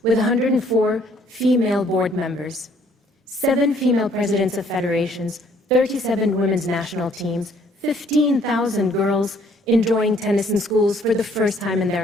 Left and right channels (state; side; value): normal; both; correlation 0.62